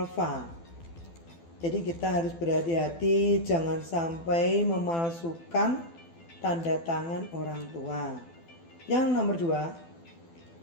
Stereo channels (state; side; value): late; right; 12 ms